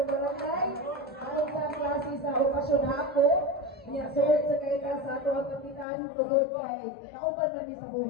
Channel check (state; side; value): drops out; right; at 5.9 s